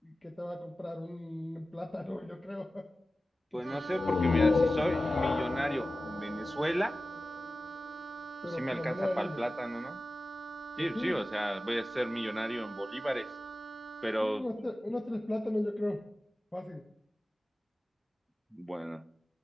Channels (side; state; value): both; normal; correlation 0.95